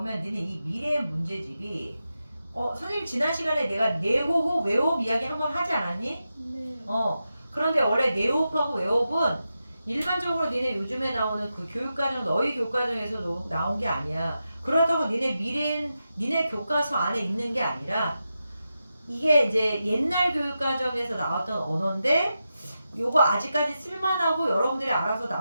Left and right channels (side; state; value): both; inverted; correlation -0.89